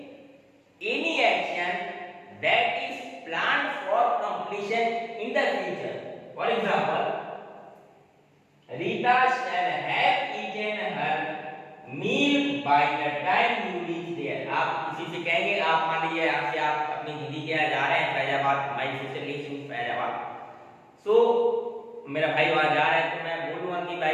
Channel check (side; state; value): both; identical; correlation 1.00